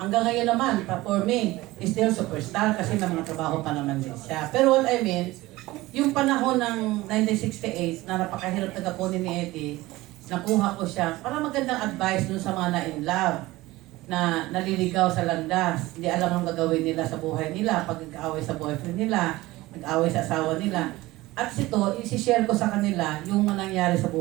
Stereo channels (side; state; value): left; quieter; 18.9 dB